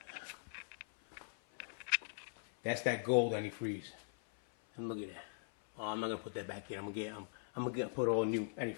That's that gold antifreeze. And look at that. Oh, I'm not gonna put that back in. I'm gonna put all new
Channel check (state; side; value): silent; right; 51 dB below the other